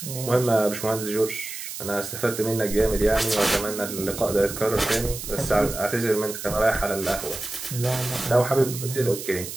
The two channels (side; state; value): right; noise; hiss, 9 dB below the sound